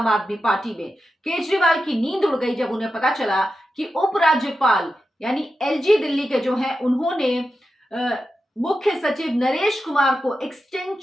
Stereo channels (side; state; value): both; normal; correlation 0.90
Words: आदमी पार्टी में। केजरीवाल की नींद उड़ गई जब उन्हें पता चला कि उपराज्यपाल यानी एलजी दिल्ली के जो हैं उन्होंने मुख्य सचिव नरेश कुमार को